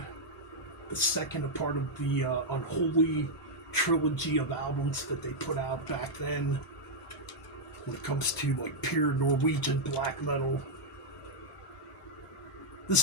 The second, a part of the unholy trilogy of albums that they put out back then. When it comes to like pure Norwegian black metal.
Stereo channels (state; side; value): normal; both; correlation -0.04